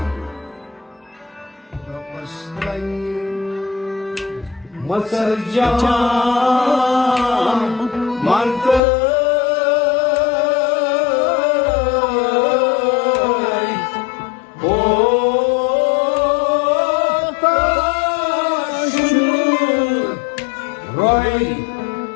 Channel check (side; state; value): right; drops out; at 8.8 s